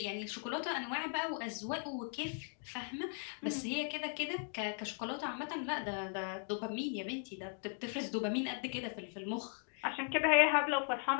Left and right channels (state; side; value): silent; right; 52 dB below the other